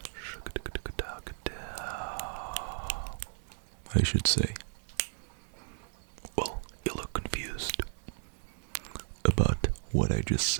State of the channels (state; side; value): silent; left; digital silence